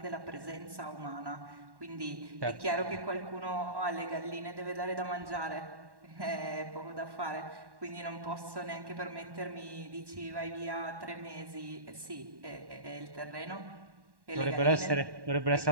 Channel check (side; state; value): left; late; 1.1 ms